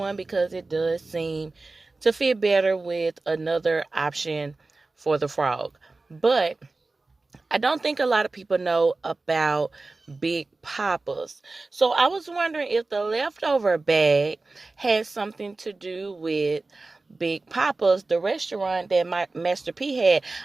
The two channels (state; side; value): quieter; left; 3.4 dB